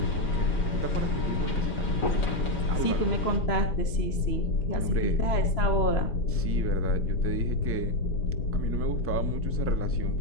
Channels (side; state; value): right; late; 3.0 ms